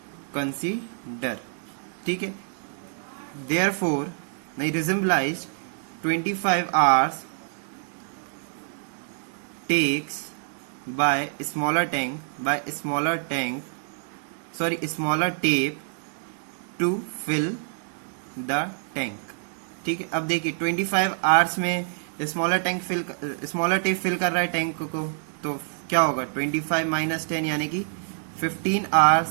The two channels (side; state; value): left; silent; 61 dB below the other